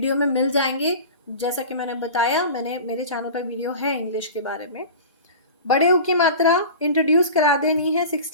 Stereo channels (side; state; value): both; inverted; correlation -0.35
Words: में मिल जाएंगे। जैसा कि मैंने बताया, मेरे चैनल पर वीडियो है इंग्लिश के बारे में। बड़े ऊ की मात्रा इंट्रोड्यूस करा देनी है